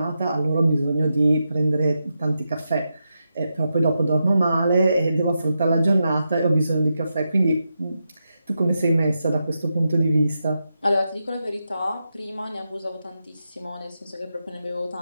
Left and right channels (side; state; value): both; inverted; correlation -0.87